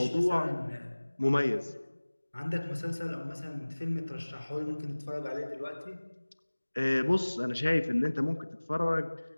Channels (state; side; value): inverted; both; correlation -1.00